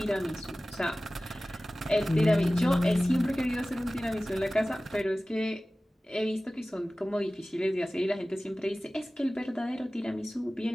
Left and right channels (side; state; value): both; normal; correlation 0.97